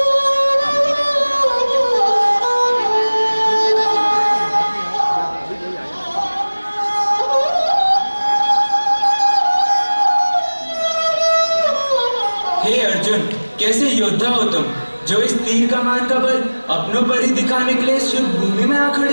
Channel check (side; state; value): both; inverted; correlation -1.00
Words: हे अर्जुन, कैसे योद्धा हो तुम, जो इस तीर कमान का बल अपनों पर ही दिखाने के लिए शुभ भूमि में आ